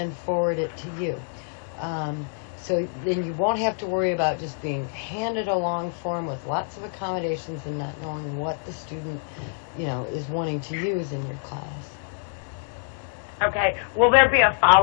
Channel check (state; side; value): silent; right; digital silence